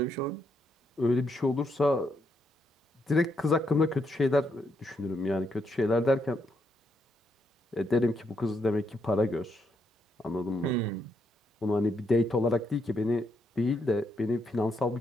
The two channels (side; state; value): both; normal; correlation 0.78